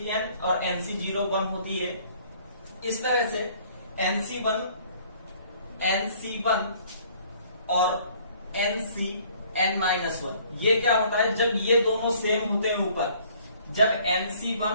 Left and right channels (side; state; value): both; inverted; correlation -0.58